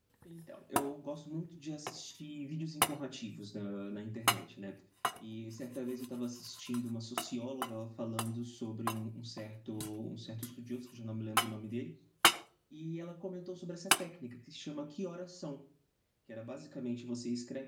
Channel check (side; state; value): both; identical; correlation 1.00